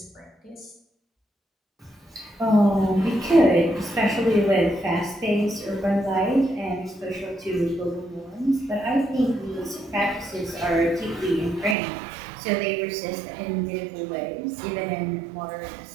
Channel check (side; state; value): left; drops out; at 11.8 s